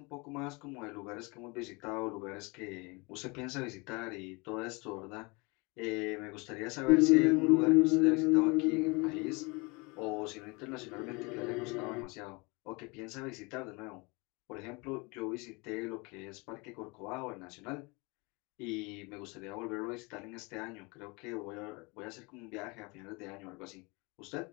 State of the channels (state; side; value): quieter; right; 27.8 dB